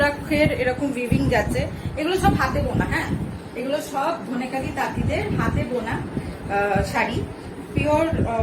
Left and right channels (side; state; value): both; identical; correlation 1.00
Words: এরকম উইভিং যাচ্ছে। এগুলো সব হাতে বোনা, হ্যাঁ, এগুলো সব ধনেকালি তাঁতিদের হাতে বোনা শাড়ি, পিওর,